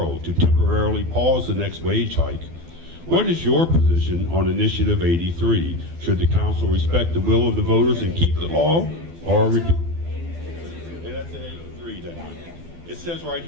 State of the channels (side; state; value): left; late; 12 ms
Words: to temporarily pause the next wage hike. What is your position on Initiative 83? Should the council respect the will of the voters and keep the law, or repeal? Hey, that's 83, doesn't it? It says right